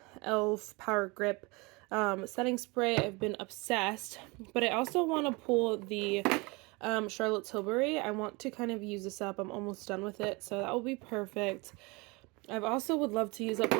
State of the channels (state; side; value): quieter; left; 26.2 dB